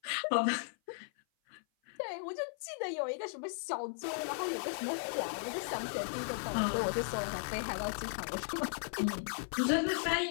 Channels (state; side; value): silent; right; 54 dB below the other